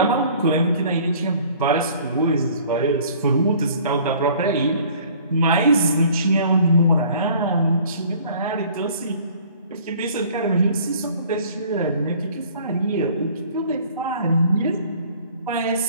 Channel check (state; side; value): inverted; both; correlation -0.52